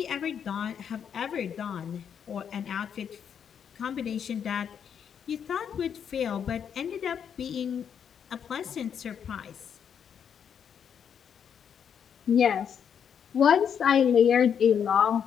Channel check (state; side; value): quieter; right; 7.9 dB